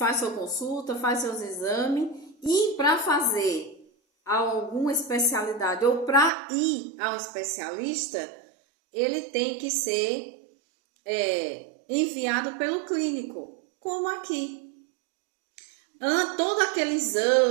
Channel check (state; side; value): drops out; left; at 6.3 s